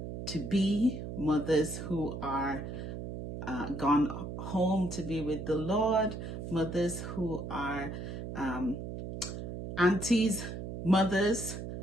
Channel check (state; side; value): noise; right; hum, 7 dB below the sound